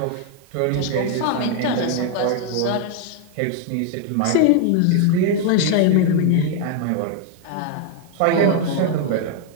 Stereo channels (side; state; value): both; different; correlation 0.00